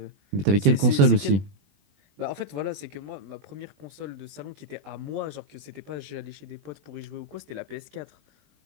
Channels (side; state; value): left; late; 21 ms